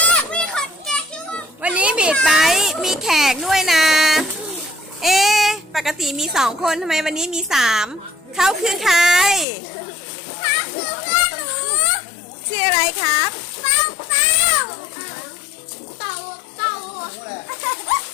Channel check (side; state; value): right; drops out; at 9.5 s